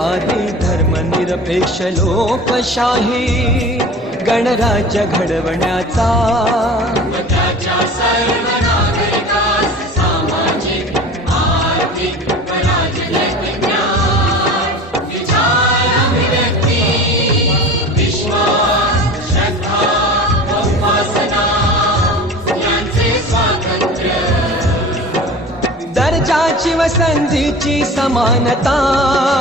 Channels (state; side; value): normal; both; correlation 0.38